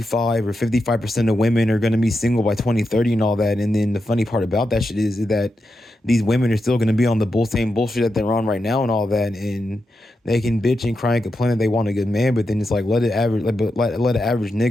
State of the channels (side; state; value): both; normal; correlation 0.87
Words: or 55% of women are going to be single by 2030 and all that. And then the funny part about that shit is that these women are still going to be on the same bullshit that they're on right now and all that. And they can bitch and cry and complain that they want a good man, but then it's like, let an average